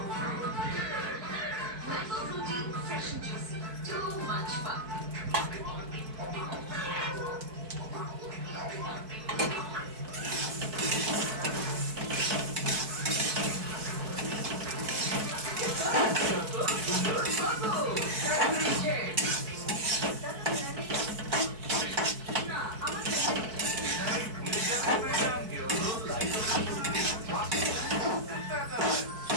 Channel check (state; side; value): late; left; 4.6 ms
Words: mango Frooti fresh and juicy too much fun